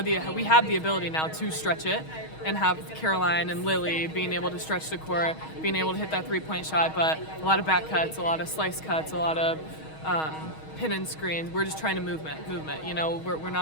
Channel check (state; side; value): late; right; 6.3 ms